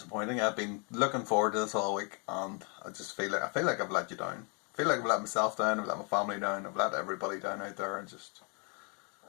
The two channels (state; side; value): quieter; right; 35.7 dB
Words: I've been looking forward to this all week, and I feel like I've let you down. I feel like I've let myself down. I've let my family down. I've let everybody down out there, and just